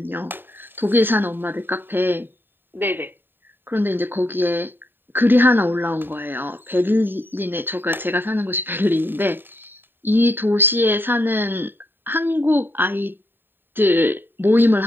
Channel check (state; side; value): late; left; 0.096 ms